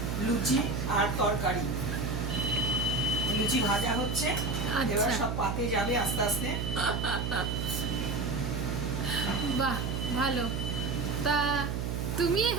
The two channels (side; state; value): right; noise; hum, 1 dB below the sound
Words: লুচি আর তরকারি, লুচি ভাজা হচ্ছে। এবার সব পাতে যাবে আস্তে আস্তে। বাহ, ভালো। তা তুমি